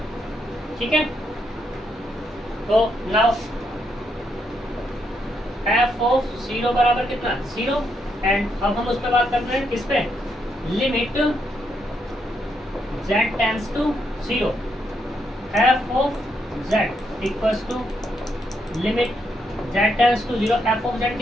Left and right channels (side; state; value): both; normal; correlation 0.78